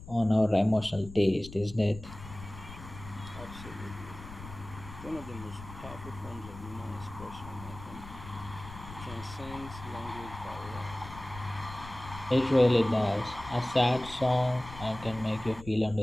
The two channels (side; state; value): left; noise; rumble, 14 dB below the sound